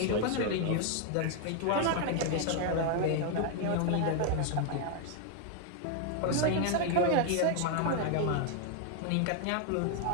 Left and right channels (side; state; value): both; different; correlation 0.00